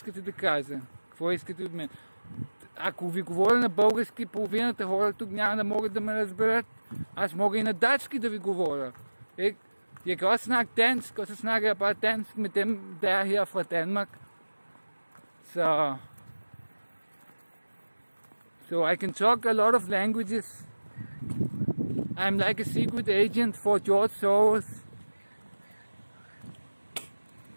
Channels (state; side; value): inverted; both; correlation -1.00